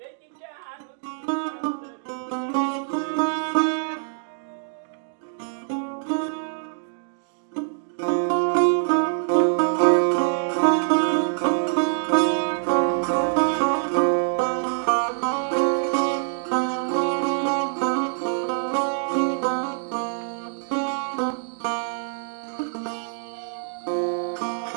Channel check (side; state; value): left; silent; digital silence